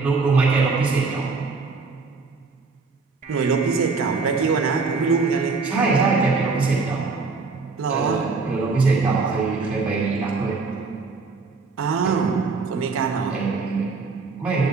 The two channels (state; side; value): quieter; left; 4.3 dB